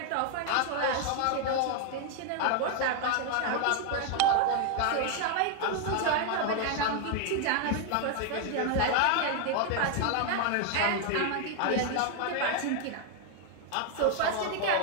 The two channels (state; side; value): different; both; correlation 0.00